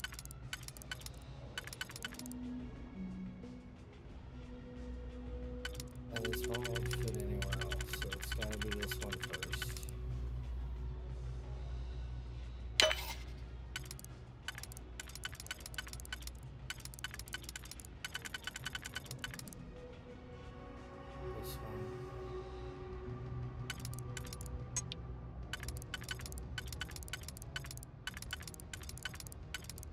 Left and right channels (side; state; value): both; identical; correlation 1.00